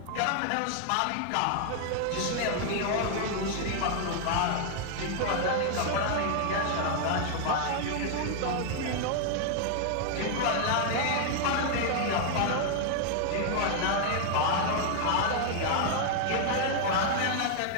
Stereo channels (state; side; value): different; both; correlation 0.00